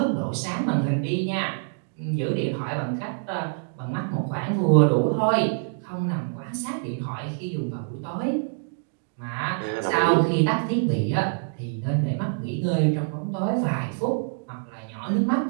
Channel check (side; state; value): left; silent; digital silence